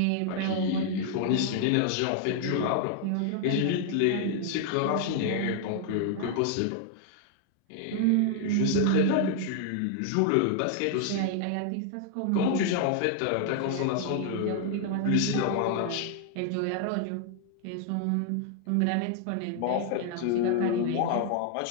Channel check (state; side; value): different; both; correlation 0.00